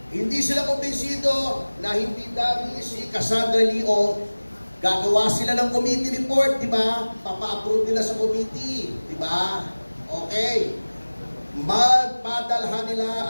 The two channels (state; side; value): inverted; both; correlation -1.00